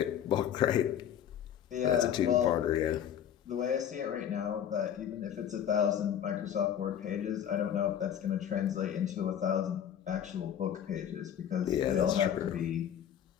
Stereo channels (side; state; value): right; quieter; 9.5 dB